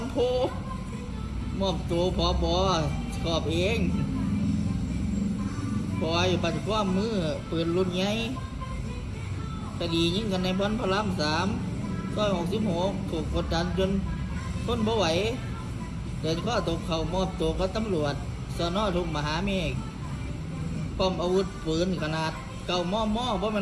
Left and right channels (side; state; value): both; identical; correlation 1.00